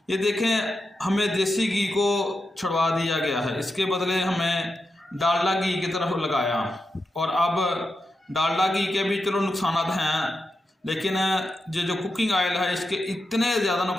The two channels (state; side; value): normal; both; correlation 0.88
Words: ये देखें, हमें देसी घी को छुड़वा दिया गया है, इसके बदले हमें डालडा घी की तरफ लगाया। और अब डालडा घी के भी चलो नुकसान हैं, लेकिन ये जो कुकिंग ऑयल है इसके इतने ज़्यादा